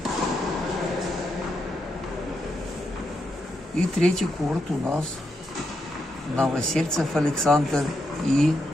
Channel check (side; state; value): both; normal; correlation 0.82